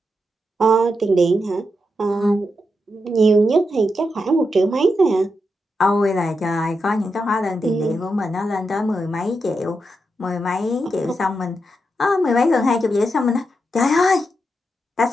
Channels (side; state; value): both; normal; correlation 0.85